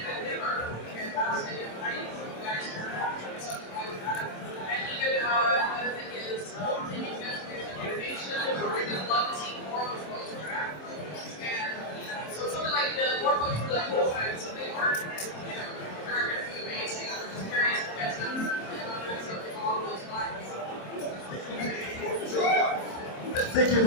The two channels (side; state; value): right; late; 27 ms